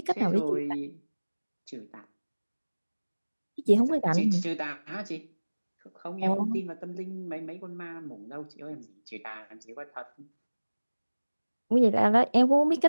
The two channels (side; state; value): both; inverted; correlation -1.00